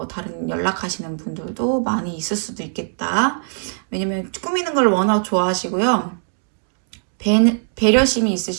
다른 연락하시는 분들도 많이 있을 수도 있겠다. 왜냐면 꾸미는 걸 워낙 좋아하시고요. 배려심이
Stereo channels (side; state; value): left; silent; digital silence